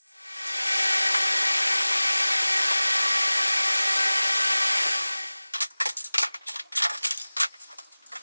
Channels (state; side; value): inverted; both; correlation -0.98